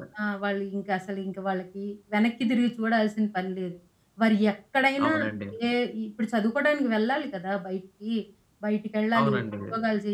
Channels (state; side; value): identical; both; correlation 1.00